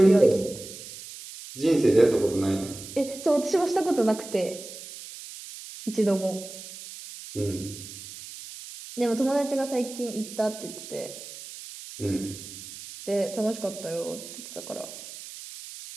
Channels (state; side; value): noise; right; hiss, 13 dB below the sound